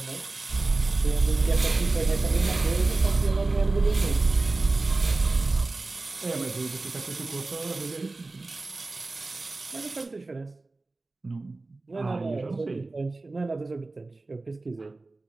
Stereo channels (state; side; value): quieter; left; 3.3 dB